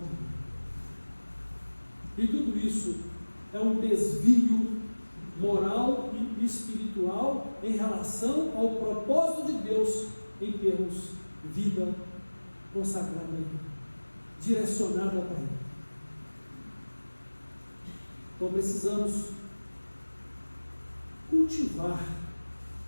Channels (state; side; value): inverted; both; correlation -1.00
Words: E tudo isso é um desvio moral e espiritual em relação ao propósito de Deus em termos vida consagrada a Ele, direcionada para Ele. Então precisamos cultivar